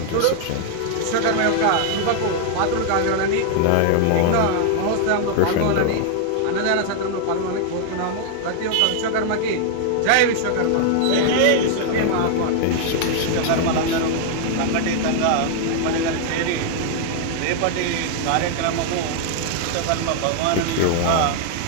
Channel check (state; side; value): different; both; correlation 0.00